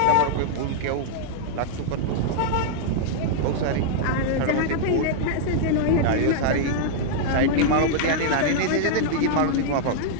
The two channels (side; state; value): both; different; correlation -0.01